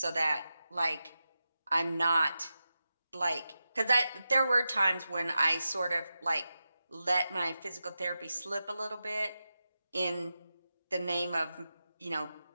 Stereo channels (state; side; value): inverted; both; correlation -0.91